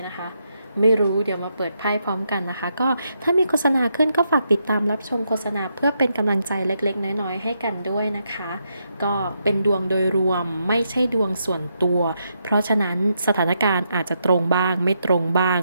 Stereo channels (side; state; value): both; inverted; correlation -0.80